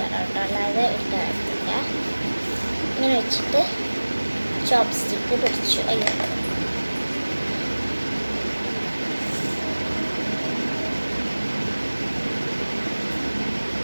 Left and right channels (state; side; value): inverted; both; correlation -1.00